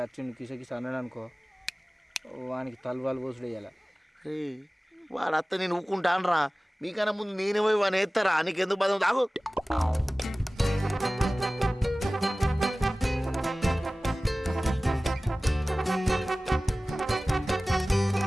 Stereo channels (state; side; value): normal; both; correlation 0.97